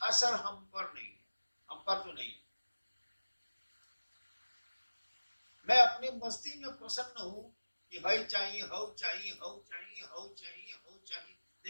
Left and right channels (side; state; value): both; inverted; correlation -1.00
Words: हम पर नहीं है, हम पर तो नहीं है। मैं अपनी मस्ती में प्रसन्न हूं कि हई चाहिए, हऊ चाहिए, हऊ चाहिए, हऊ चाहिए, हऊ चाहिए।